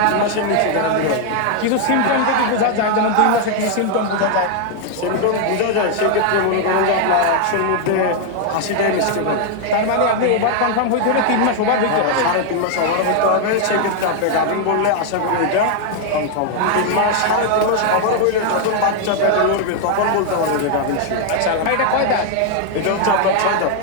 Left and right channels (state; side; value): different; both; correlation 0.00